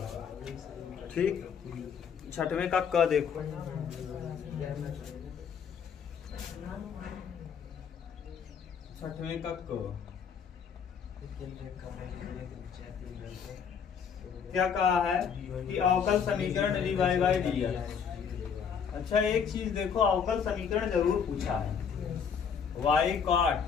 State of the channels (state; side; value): quieter; right; 7.0 dB